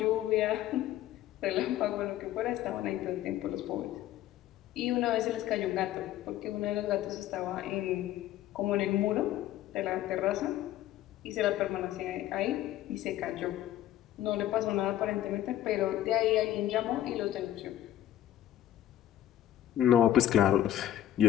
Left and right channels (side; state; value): right; quieter; 12.6 dB